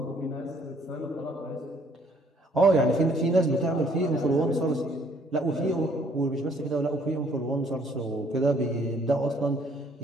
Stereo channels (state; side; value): normal; both; correlation 0.62